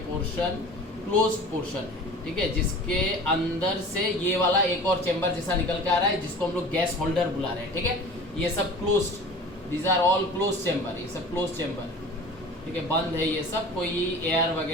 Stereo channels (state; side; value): normal; both; correlation 0.40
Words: पोर्शन क्लोज्ड पोर्शन है, ठीक है, जिसके अंदर से ये वाला एक और चेंबर जैसा निकल के आ रहा है, जिसको हम लोग गैस होल्डर बुला रहे हैं, ठीक है। ये सब closed, these are all close chamber, ये सब क्लोज चेंबर, ठीक है, बंद है ये सब, कोई एयर